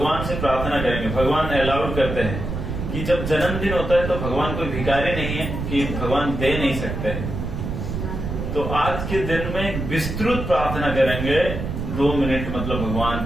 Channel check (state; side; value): noise; right; rumble, 4 dB below the sound